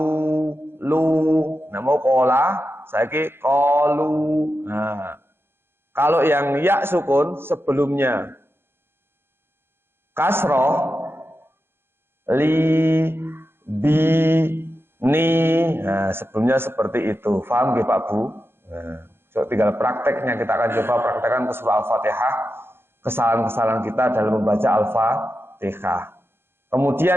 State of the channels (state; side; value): late; left; 0.11 ms